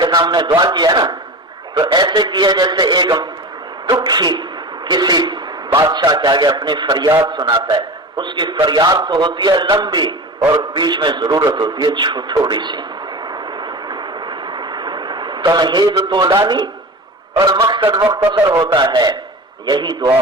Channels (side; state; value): both; normal; correlation 0.31